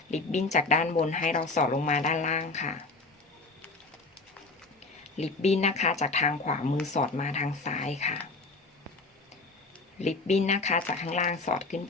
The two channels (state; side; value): quieter; right; 3.6 dB